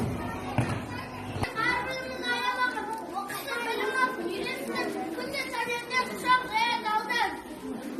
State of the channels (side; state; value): both; identical; correlation 1.00